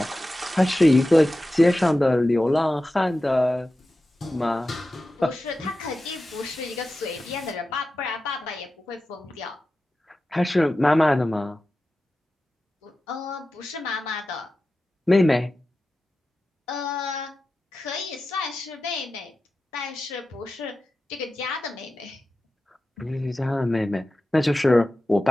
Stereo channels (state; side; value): normal; both; correlation 0.93